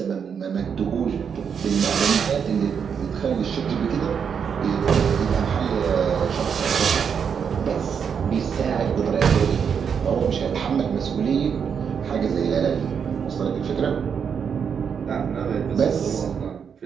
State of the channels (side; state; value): left; quieter; 7.0 dB